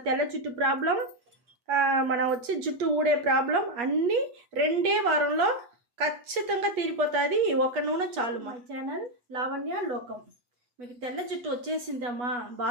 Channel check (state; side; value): late; left; 8.4 ms